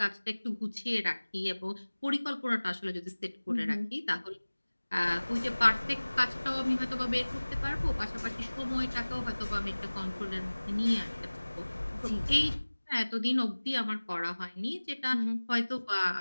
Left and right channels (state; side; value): inverted; both; correlation -1.00